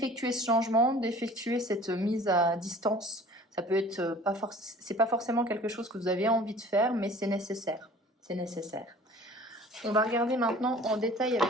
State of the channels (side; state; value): both; normal; correlation 0.47